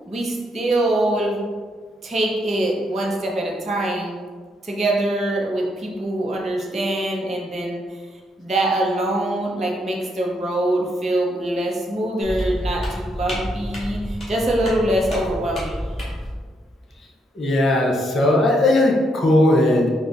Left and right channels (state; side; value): normal; both; correlation 0.76